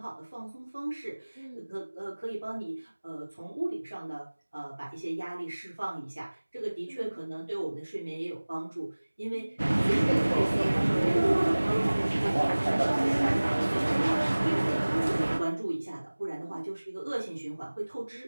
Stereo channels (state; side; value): inverted; both; correlation -1.00